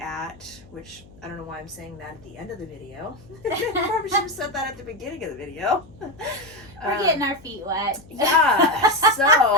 which I don't know why I'm saying that at the end of the video. Probably should have said that at the beginning of the video. We're getting our feet wet. Yeah,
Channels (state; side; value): noise; left; hum, 23 dB below the sound